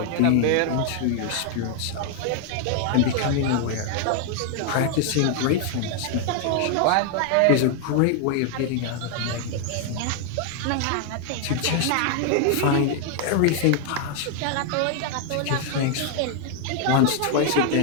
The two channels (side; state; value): both; different; correlation 0.00